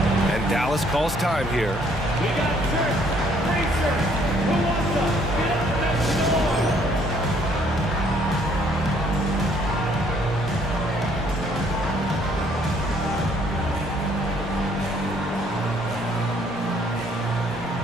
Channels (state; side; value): normal; both; correlation 0.64